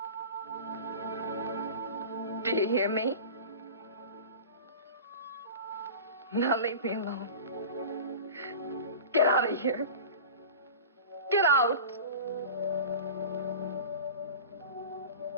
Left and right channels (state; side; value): inverted; both; correlation -0.35